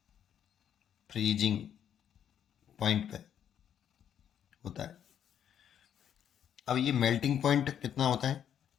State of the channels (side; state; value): right; quieter; 9.3 dB